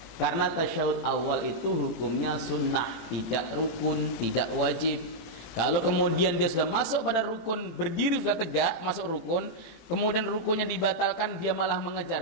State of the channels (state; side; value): late; right; 18 ms